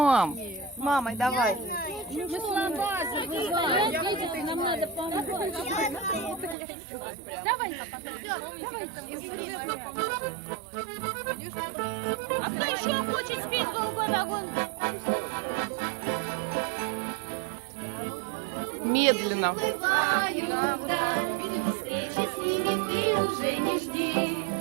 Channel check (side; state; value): left; drops out; at 6.6 s